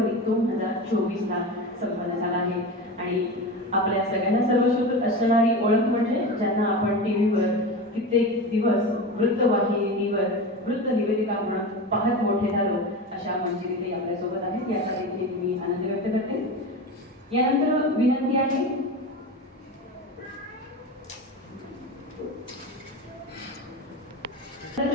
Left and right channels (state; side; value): normal; both; correlation 0.26